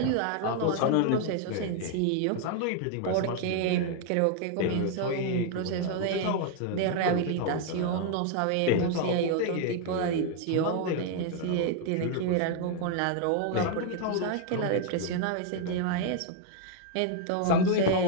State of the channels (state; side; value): different; both; correlation 0.00